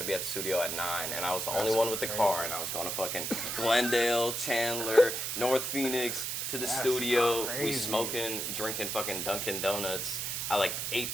be at the studio at 9, and I was the only one with the car, and I was going to fucking Glendale, Chandler, North Phoenix to the studio. crazy. We smoking, drinking fucking Dunkin' Donuts at like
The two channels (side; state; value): right; noise; hiss, 2 dB below the sound